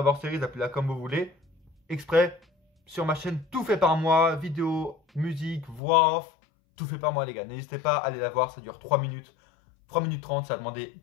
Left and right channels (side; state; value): right; drops out; at 5.8 s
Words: Series, appelez-la comme vous voulez. Exprès, sur ma chaîne, tout fait par moi. Vidéo, musique, voix off, tout fait par moi, les gars. N'hésitez pas à aller la voir, ça dure 3 minutes. 3 minutes 30, ça a demandé